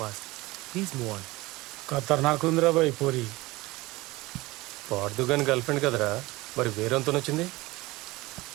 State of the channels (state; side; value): quieter; left; 20.7 dB